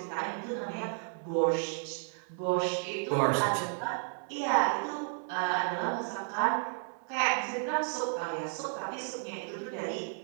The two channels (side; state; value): left; silent; 56 dB below the other